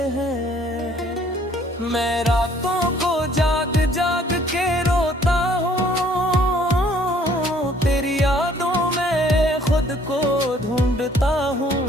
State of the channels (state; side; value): normal; both; correlation 0.60